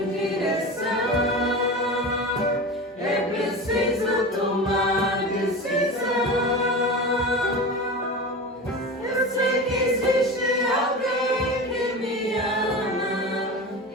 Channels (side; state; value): both; normal; correlation 0.29